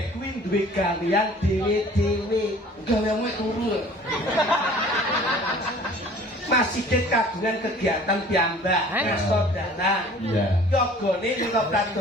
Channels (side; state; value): both; normal; correlation 0.49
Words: kuwi duwe gawean dhewe-dhewe. Gaweanmu turu. Masih kagungan kegiatan piyambak, ngestor dana. Iya. Yogane ning